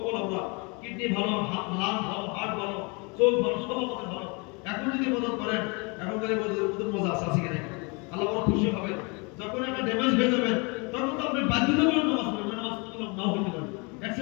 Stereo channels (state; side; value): quieter; right; 30.7 dB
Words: আমরা কিডনি ভালো, লাং ভালো, হার্ট ভালো, চোখ ভালো, সব আমাদের ভালো। এখন যদি মদত করেন, এখনকার মজা আছে আছে কিনা, আল্লাহ বড় খুশি হবে। যখন একটা ড্যামেজ হয়ে যাবে তখন তো আপনি বাধ্যতামূলক নামাজ পড়বেন, নামাজ নাও হইতে পারে,